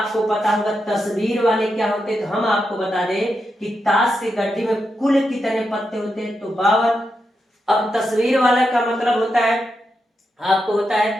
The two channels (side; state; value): both; normal; correlation 0.86